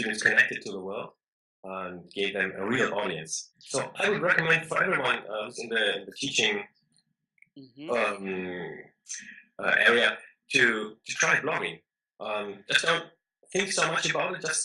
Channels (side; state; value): both; identical; correlation 1.00